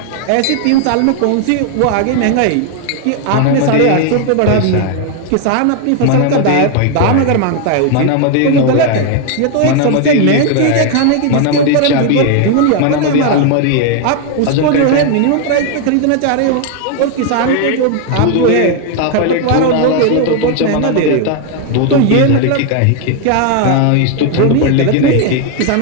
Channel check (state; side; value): different; both; correlation 0.01